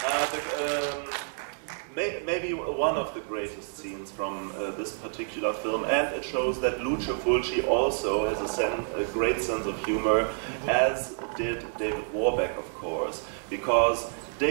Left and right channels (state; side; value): silent; left; 59 dB below the other